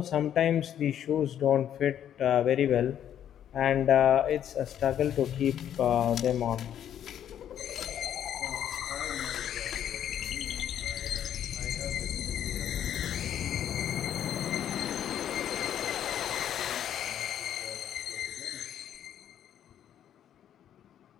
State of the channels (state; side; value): quieter; right; 10.1 dB